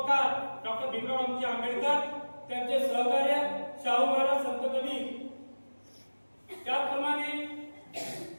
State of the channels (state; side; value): inverted; both; correlation -1.00